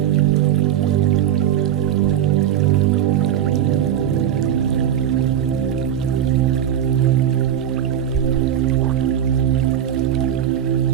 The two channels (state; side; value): quieter; left; 10.2 dB